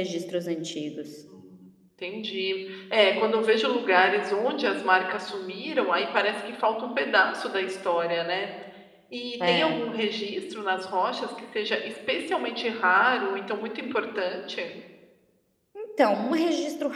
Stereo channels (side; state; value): both; identical; correlation 1.00